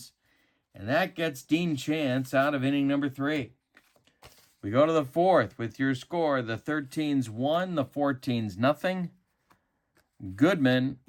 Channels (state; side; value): identical; both; correlation 1.00